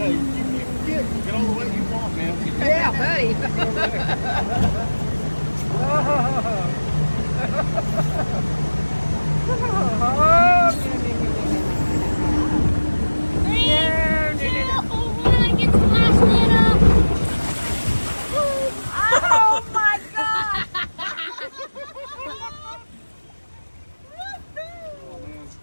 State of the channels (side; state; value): both; inverted; correlation -1.00